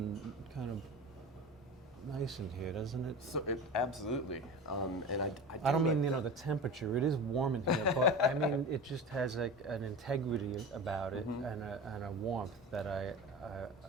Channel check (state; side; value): normal; both; correlation 0.30